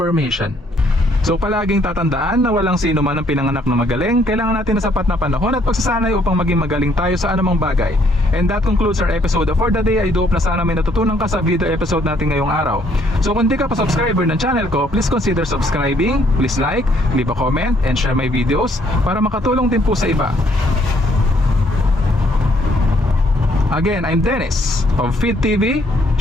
So palaging tatandaan na walang sino man ang pinanganak na magaling. Kailangan natin ng sapat na panahon at pagsasanay upang maging magaling tayo sa anumang bagay. And that concludes our episode for the day. I do hope na sana may natutunan ka sa video episode natin ngayong araw. So kung di ka pa subscriber ng channel ko, please consider subscribing. Please like, leave a comment, and share my videos para makatulong din po sa iba. Again, I'm Dennis of Feed TV,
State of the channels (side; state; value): both; normal; correlation 0.67